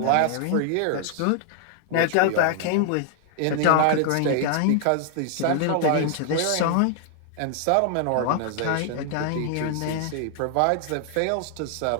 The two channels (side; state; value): both; different; correlation 0.00